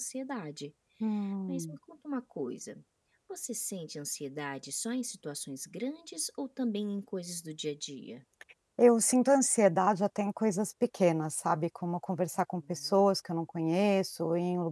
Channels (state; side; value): identical; both; correlation 1.00